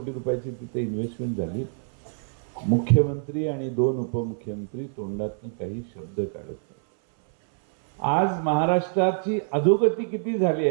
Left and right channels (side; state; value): left; silent; 61 dB below the other